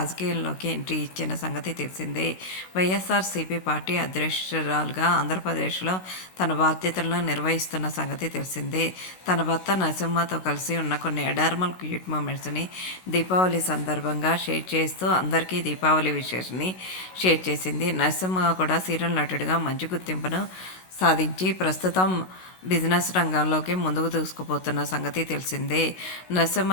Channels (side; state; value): right; late; 16 ms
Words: ఎంట్రీ ఇచ్చిన సంగతి తెలిసిందే. వైఎస్ఆర్‌సీపీ పార్టీ అధ్యక్షురాలుగా ఆంధ్రప్రదేశ్‌లో తన బాధ్యతలను నిర్వహిస్తున్న సంగతి తెలిసిందే. తన భర్త నరసింహతో కలిసి ఉన్న కొన్ని అడార్మల్ క్యూట్ మూమెంట్స్‌ని దీపావళి సందర్భంగా షేర్ చేస్తూ అందరికీ దీపావళి విషెస్‌ని షేర్ చేసింది. నరసింహ కూడా సీరియల్ నటుడిగా మంచి గుర్తింపును సాధించి ప్రస్తుతం బిజినెస్ రంగంలోకి ముందుకు దూసుకుపోతున్న సంగతి తెలిసిందే.